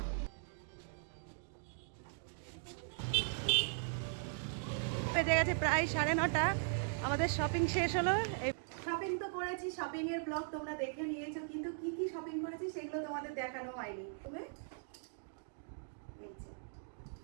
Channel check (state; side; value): silent; left; digital silence